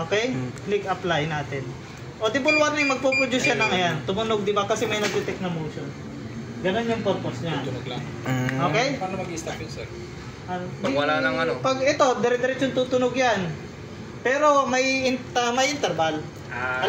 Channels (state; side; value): identical; both; correlation 1.00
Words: Click apply natin. Audible warning, magpo-produce siya ng ayan. Tumunog, di ba? Kasi may nag-detect na motion. Ganun yung purpose niya. Tunog lang. Okay? Paano mag-i-stop yun, sir? Pag wala nang ano? Pag ito, dire-diretso tutunog yan. Pero may interval.